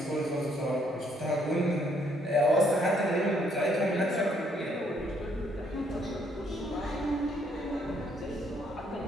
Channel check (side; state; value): both; normal; correlation 0.69